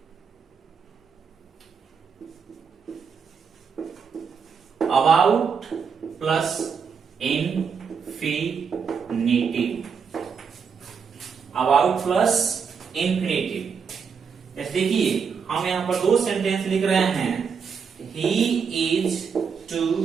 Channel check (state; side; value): quieter; left; 6.2 dB